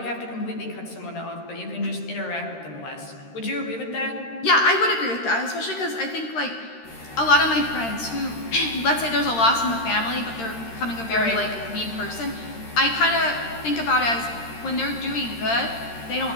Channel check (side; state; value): right; late; 13 ms